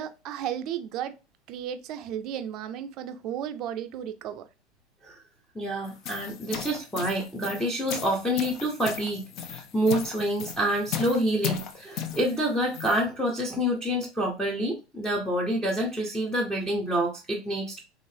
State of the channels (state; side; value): normal; both; correlation 0.50